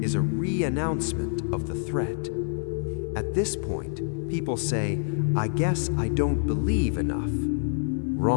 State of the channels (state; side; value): silent; right; 60 dB below the other